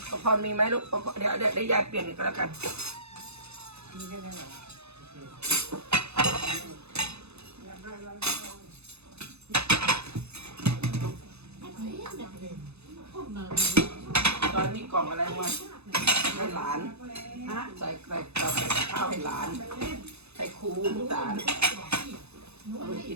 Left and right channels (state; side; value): late; left; 0.80 ms